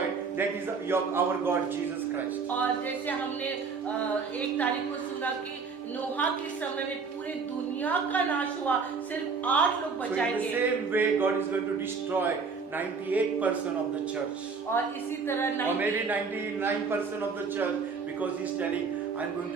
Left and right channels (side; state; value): left; quieter; 5.1 dB